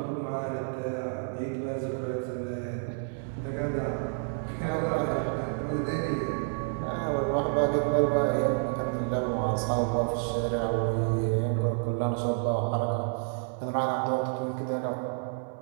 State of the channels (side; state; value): left; silent; digital silence